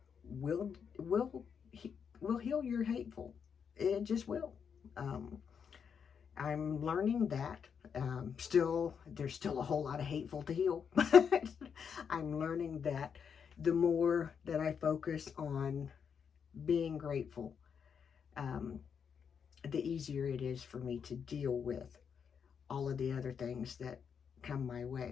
will will will heal your hateful. It just will. Um, I'm learning that. There's still a whole lot of hateful to heal, but I'm learning that the more that I focus on being grateful, um, the easier it is for me to deal with all of the other things that come my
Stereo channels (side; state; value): right; quieter; 6.9 dB